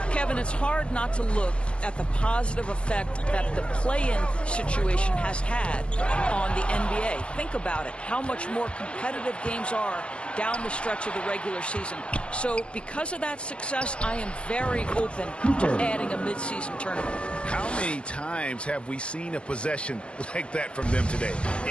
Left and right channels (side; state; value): right; late; 0.058 ms